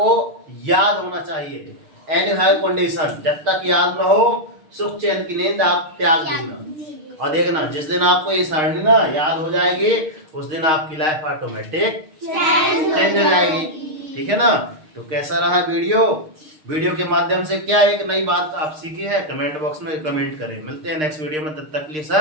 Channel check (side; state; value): left; late; 6.5 ms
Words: याद होना चाहिए। एनी हाई कंडीशन, जब तक याद न हो सुख चैन की नींद आप त्याग देना। और देखना जिस दिन आपको ये सारणी ना याद हो जाएगी, उस दिन आपकी लाइफ ऑटोमेटिक चेंज हो जाएगी। ठीक है ना। तो कैसा रहा वीडियो के माध्यम से क्या एक नई बात आप सीखी है, कमेंट बॉक्स में कमेंट करें। मिलते हैं नेक्स्ट वीडियो में, तब तक के लिए